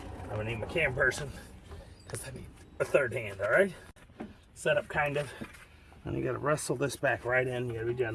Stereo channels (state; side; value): identical; both; correlation 1.00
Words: I'm gonna need my cam person because I need a third hand. All right, set up kind of, and you got to wrestle this back right in. You got to be